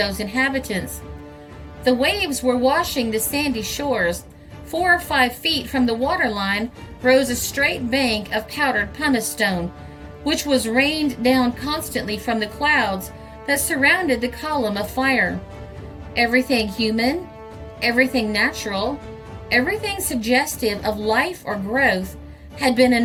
inhabitants. The waves were washing the sandy shores. 4 or 5 feet from the waterline rose a straight bank of powdered pumice stone, which was rained down constantly from the clouds that surrounded the column of fire. Everything human, everything natural, everything suggestive of life or growth had been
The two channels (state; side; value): identical; both; correlation 1.00